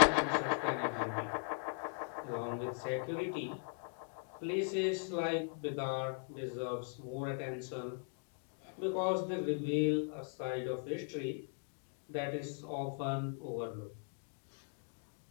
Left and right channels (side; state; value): right; silent; 52 dB below the other